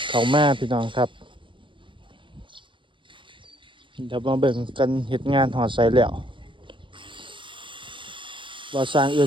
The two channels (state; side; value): late; left; 0.24 ms